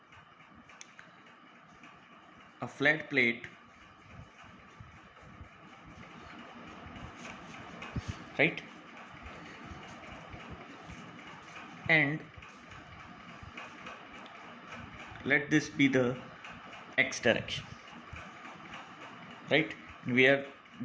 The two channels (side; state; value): both; identical; correlation 1.00